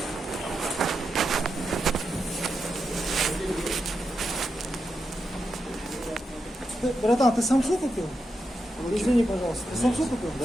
Братан, ты самсу купил? Извини, пожалуйста. Ты самсу купил?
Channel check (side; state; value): both; normal; correlation 0.86